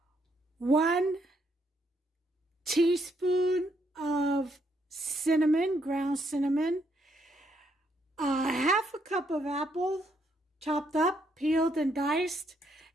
1 teaspoon of cinnamon, ground cinnamon, half a cup of apple, chopped up, peeled and diced.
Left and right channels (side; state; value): both; normal; correlation 0.74